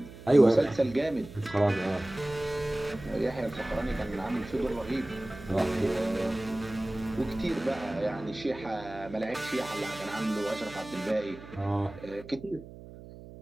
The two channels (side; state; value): right; noise; hum, 16 dB below the sound